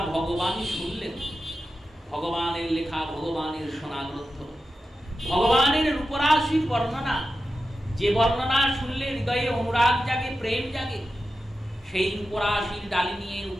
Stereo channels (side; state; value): both; normal; correlation 0.91